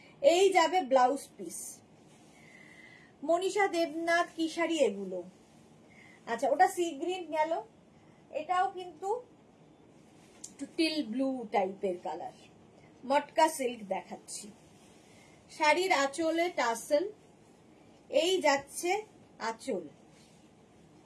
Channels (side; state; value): both; identical; correlation 1.00